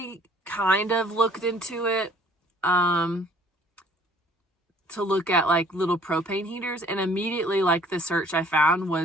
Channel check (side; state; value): both; normal; correlation 0.56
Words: kind of looked into it to look at like little propane heaters, and immediately like the search I found